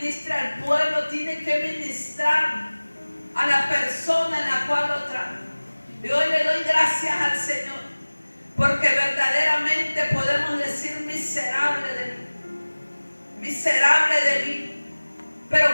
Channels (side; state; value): both; inverted; correlation -1.00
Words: al pueblo, tiene que ministrar a la persona en la cual lo trae. Y hoy le doy gracias al Señor, porque verdaderamente podemos decir: miserable de mí, miserable de mí.